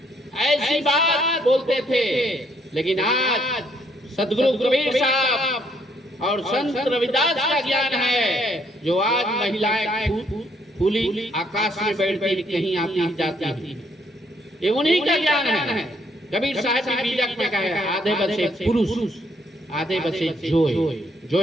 ऐसी बात बोलते थे। लेकिन आज सदगुरु कबीर साहब और संत रविदास का ज्ञान है, जो आज महिलाएं खुली आकाश में बैठती कहीं आती जाती है, ये उन्हीं का ज्ञान है। कबीर साहब की बीजक में कहा है, आधे बसे पुरुष आधे बसे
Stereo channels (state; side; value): normal; both; correlation 0.70